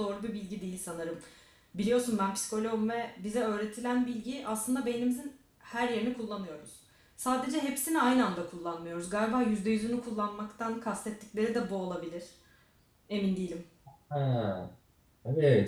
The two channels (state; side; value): identical; both; correlation 1.00